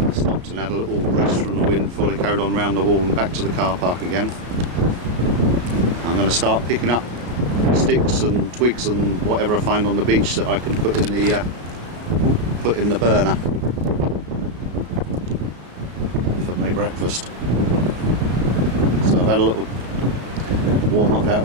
stopped and had a little rest from the wind before they carried on round the wall and back to the car park again. I'm going to start picking up sticks and twigs and whatever I find on the beach that I can put in the burner for my breakfast. So I've had a little warm up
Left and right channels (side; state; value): left; late; 33 ms